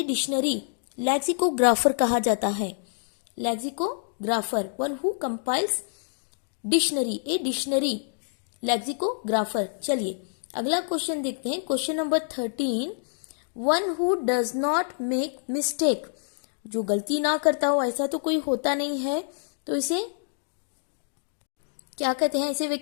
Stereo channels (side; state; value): right; silent; digital silence